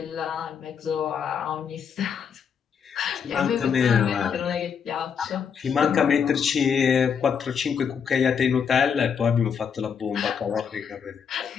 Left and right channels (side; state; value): right; quieter; 7.0 dB